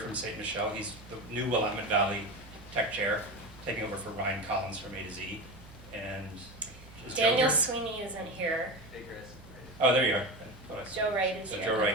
St. Michel. He's the new Willamette Valley Tech Chair, taking over for Ryan Collins from A to Z. And is Joe Daniel here? Sweeney isn't here. Hey, Chris. Oh, there you are. I thought I saw- Joe Wright is So here. Joe in the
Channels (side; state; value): both; normal; correlation 0.24